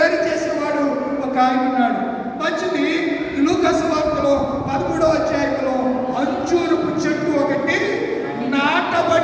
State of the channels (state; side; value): identical; both; correlation 1.00